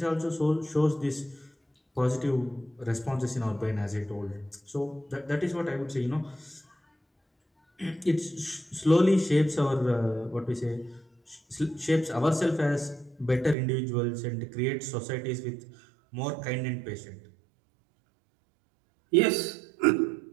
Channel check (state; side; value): drops out; left; at 13.6 s